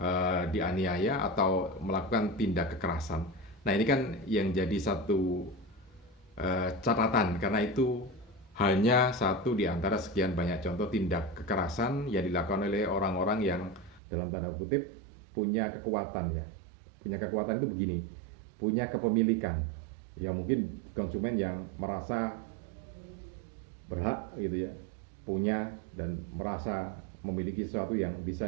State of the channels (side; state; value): left; drops out; at 14.0 s